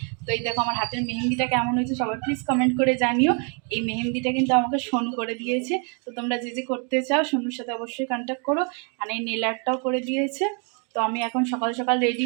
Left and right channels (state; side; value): quieter; left; 37.8 dB